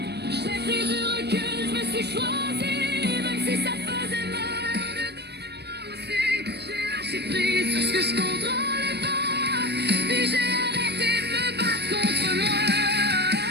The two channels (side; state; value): left; late; 0.48 ms